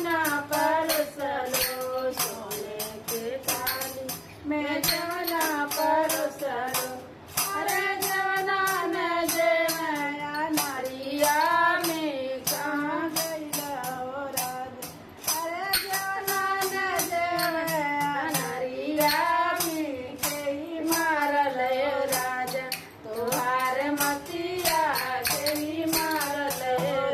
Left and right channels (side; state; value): both; identical; correlation 1.00